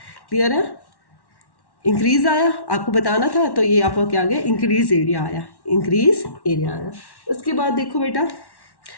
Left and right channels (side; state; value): right; late; 1.1 ms